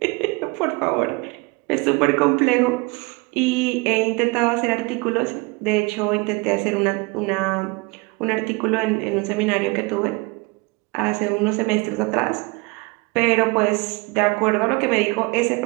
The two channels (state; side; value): quieter; left; 26.5 dB